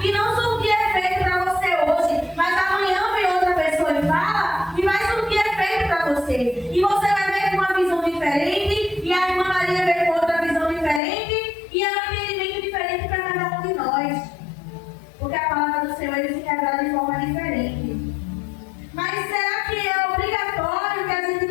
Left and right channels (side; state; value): right; drops out; at 11.0 s